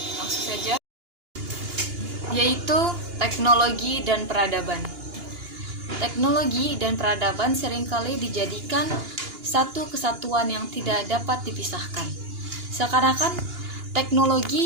langsung saja, yaitu teknologi dan peradaban. Teknologi dan peradaban seringkali dijadikan satu kesatuan yang tidak dapat dipisahkan. Seakan-akan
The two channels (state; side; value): late; left; 2.8 ms